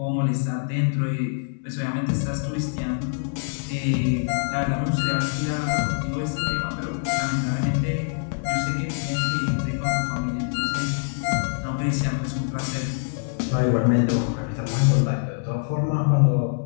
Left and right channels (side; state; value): right; silent; digital silence